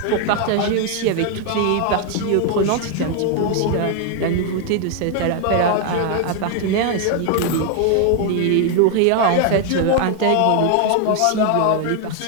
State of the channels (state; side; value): different; both; correlation 0.00